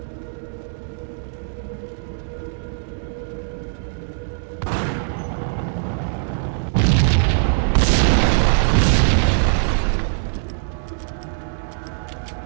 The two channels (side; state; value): left; silent; 64 dB below the other